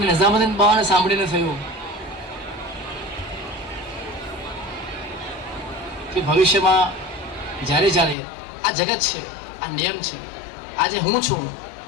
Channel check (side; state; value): right; drops out; at 8.2 s